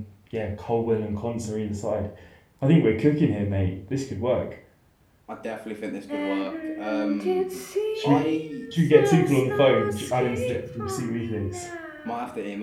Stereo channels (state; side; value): identical; both; correlation 1.00